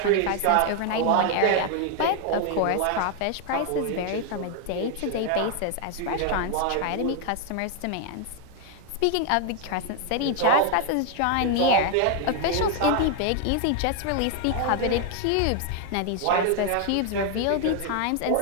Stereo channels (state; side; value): different; both; correlation 0.00